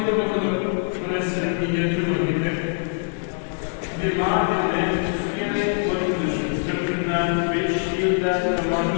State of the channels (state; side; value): silent; right; 60 dB below the other